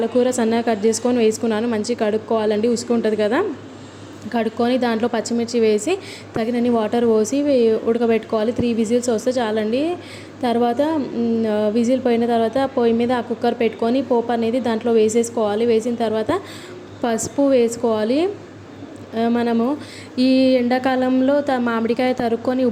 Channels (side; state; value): both; identical; correlation 1.00